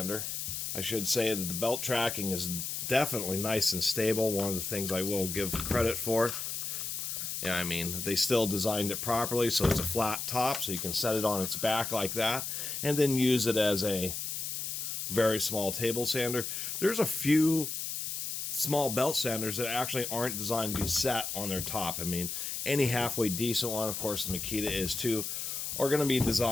I should say that the belt tracking is definitely nice and stable. One of the things I will give credit for. Yeah, I mean, they still designed it properly, so it's a flat top, so you can set it on its back like that, and then use it as a very small table sander. There's a few small belt sanders that actually aren't designed to be set on their top. I mean, any halfway decent one, of course the Makita is too, are going to be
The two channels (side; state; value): left; noise; hiss, 4 dB below the sound